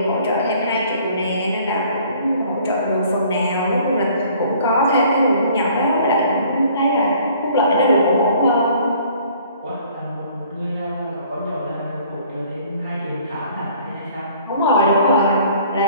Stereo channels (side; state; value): both; inverted; correlation -0.55